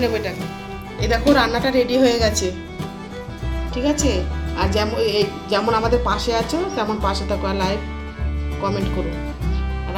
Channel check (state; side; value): identical; both; correlation 1.00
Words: নেবো এটাকে। এই দেখো রান্নাটা রেডি হয়ে গেছে, ঠিক আছে। আর যেমন আমাদের পাশে আছো তেমন পাশে থাকো, আর লাইক কমেন্ট করো।